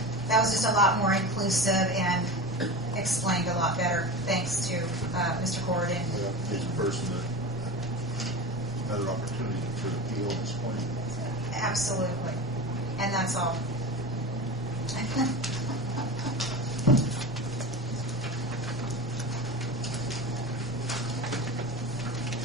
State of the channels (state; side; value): normal; both; correlation 0.28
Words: That was just a lot more inclusive and explained a lot better, thanks to Mr. Gordon. Gives a person another opportunity to appeal and explain. Absolutely. And that's all.